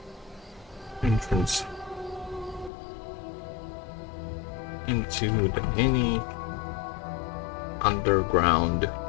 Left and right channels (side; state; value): right; drops out; at 2.7 s